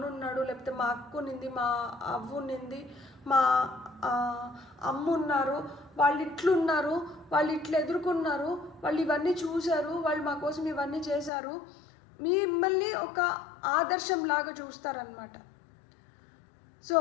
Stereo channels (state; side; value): drops out; right; at 11.3 s